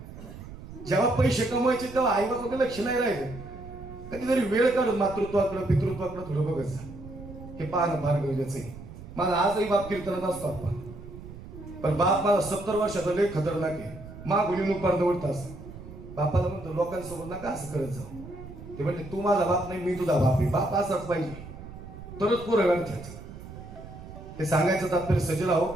जेव्हा पैसे कमवायचे तेव्हा आईबापाकडे लक्ष नाही राहिलं. कधीतरी वेळ काढून मातृत्वाकडे पितृत्वाकडे थोडं बघत जा. हे पाहणं फार गरजेचं आहे. माझा आजही बाप कीर्तनात असतो आपण, पण बाप माझा 70 वर्षाचा लय खतरनाक आहे. गुलीन उपार दवडता असं. बापाला म्हणतो लोकांसोबत नका असं करत जाऊ. ते म्हणले तू माझा बाप नाही, मी तुझा बाप आहे. बाप असाच पाहिजे, तरच पोरं घडतात. हे सांगायचं तात्पर्य सजला हो.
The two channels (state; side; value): noise; right; rumble, 14 dB below the sound